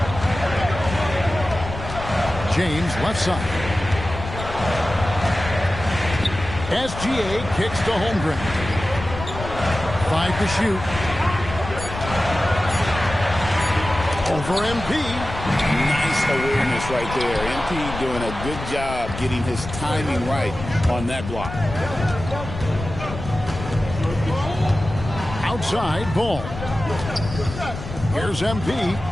James left side. SGA kicks to Holmgren. 5 to shoot. Over MP. Nice awareness right there. MP doing a good job getting his timing right on that block. Outside Ball. Here's MP.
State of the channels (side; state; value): left; noise; rumble, 9 dB below the sound